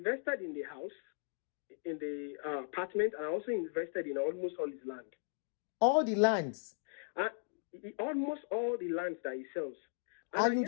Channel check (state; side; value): silent; right; digital silence